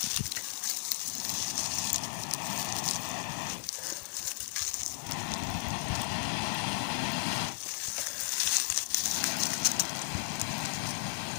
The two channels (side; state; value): right; silent; digital silence